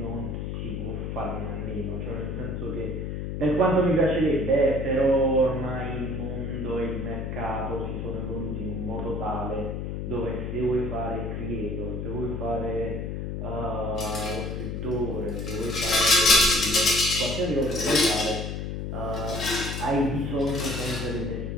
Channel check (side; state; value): left; noise; hum, 4 dB below the sound